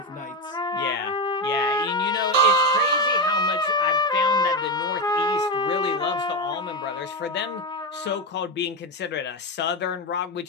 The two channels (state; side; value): normal; both; correlation 0.13